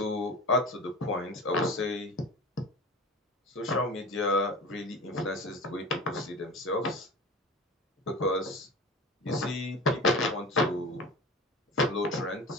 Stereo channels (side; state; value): both; normal; correlation 0.34